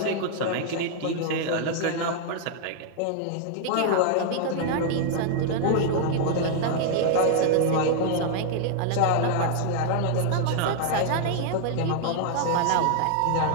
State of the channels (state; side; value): different; both; correlation 0.00